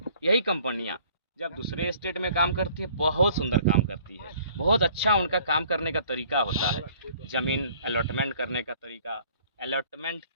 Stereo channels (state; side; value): inverted; both; correlation -0.55